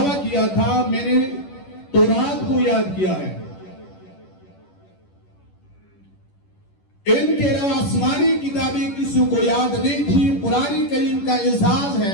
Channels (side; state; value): right; late; 11 ms